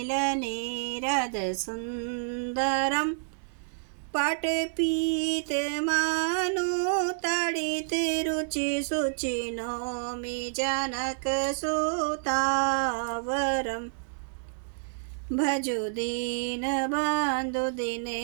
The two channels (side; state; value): left; silent; digital silence